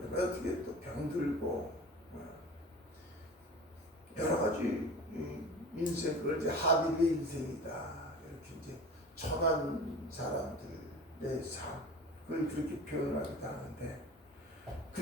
어떻게 또 병들고 여러 가지 인생, 그걸 이제 하빌의 인생이다 이렇게 이제 천한 사람들의 삶을 그렇게 표현하기도 하는데,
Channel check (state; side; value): normal; both; correlation 0.37